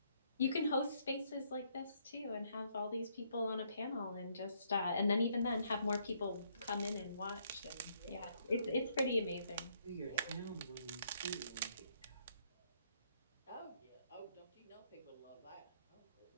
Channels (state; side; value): inverted; both; correlation -0.70